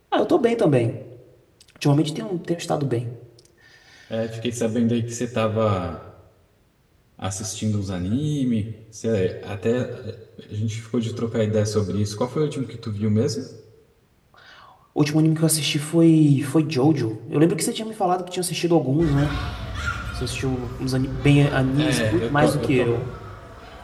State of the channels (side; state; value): both; identical; correlation 1.00